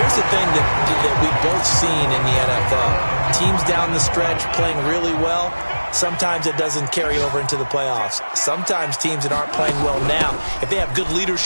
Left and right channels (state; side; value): inverted; both; correlation -1.00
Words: here's the thing that we've both seen in the NFL. Teams down the stretch playing really well. sometimes it doesn't carry over into the playoffs. Sometimes teams that aren't playing well now, if they have good